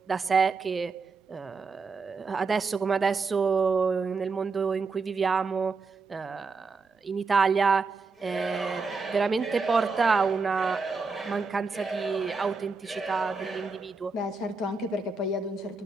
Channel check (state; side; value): quieter; left; 4.4 dB